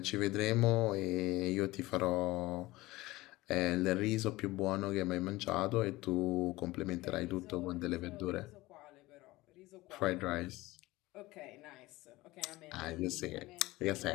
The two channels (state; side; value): quieter; right; 19.3 dB